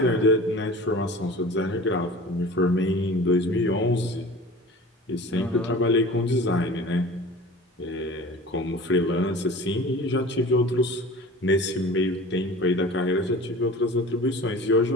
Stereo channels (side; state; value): both; normal; correlation 0.40